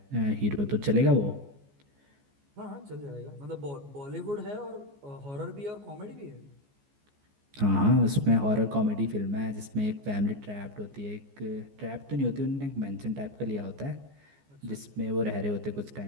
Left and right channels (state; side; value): late; left; 14 ms